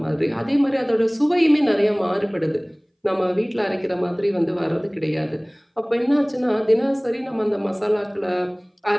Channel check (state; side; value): identical; both; correlation 1.00